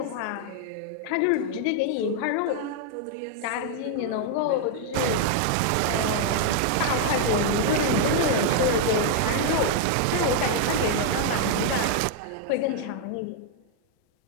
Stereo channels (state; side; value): different; both; correlation 0.00